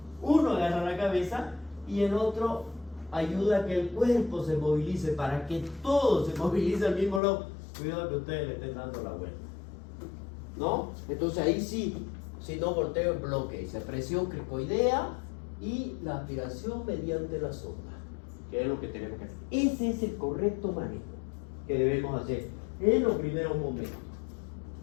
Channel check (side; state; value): right; drops out; at 7.2 s